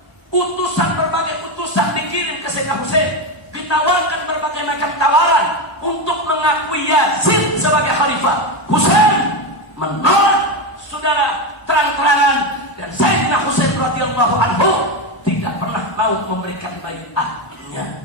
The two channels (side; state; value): right; late; 1.0 ms